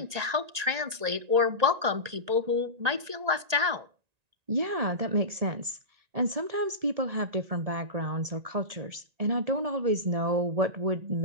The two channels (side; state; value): left; late; 1.9 ms